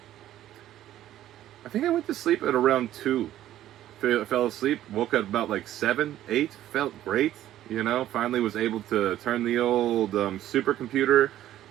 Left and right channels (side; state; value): left; quieter; 12.9 dB